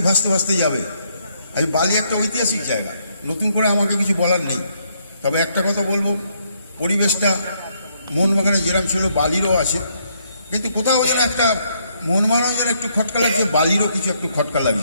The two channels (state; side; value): inverted; both; correlation -0.72